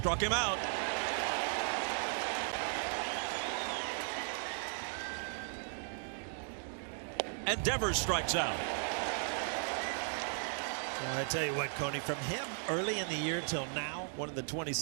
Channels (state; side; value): silent; left; 53 dB below the other